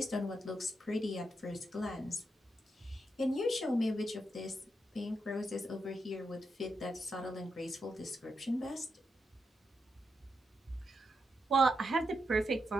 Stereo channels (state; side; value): normal; both; correlation 0.83